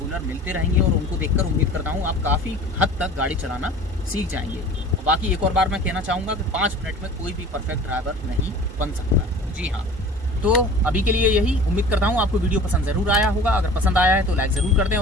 मिलते रहेंगे, और उनको देखकर उम्मीद करता हूँ आप काफ़ी हद तक गाड़ी चलाना सीख जाएंगे। और बाकी एक और बार मैं कहना चाहूँगा कि 5 मिनट में कोई भी परफेक्ट ड्राइवर नहीं बन सकता। जी हाँ, तो अभी के लिए यही। उम्मीद करता हूँ आपको वीडियो पसंद ज़रूर आया होगा। अगर पसंद आया है तो लाइक ज़रूर कर दें,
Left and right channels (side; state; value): both; normal; correlation 0.42